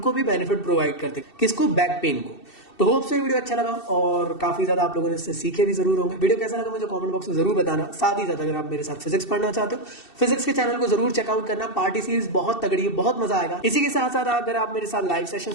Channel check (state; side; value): late; right; 2.7 ms